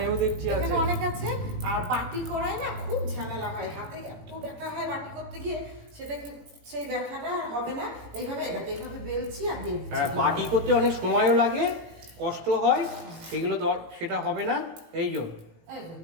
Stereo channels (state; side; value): late; left; 18 ms